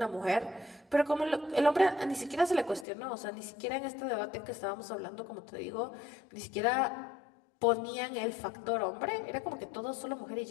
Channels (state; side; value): drops out; right; at 2.9 s